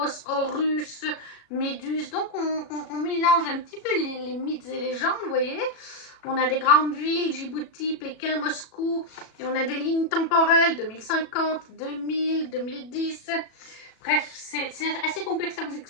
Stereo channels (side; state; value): right; late; 37 ms